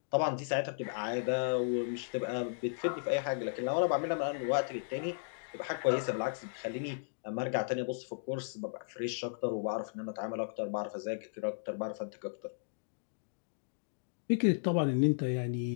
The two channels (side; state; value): right; silent; digital silence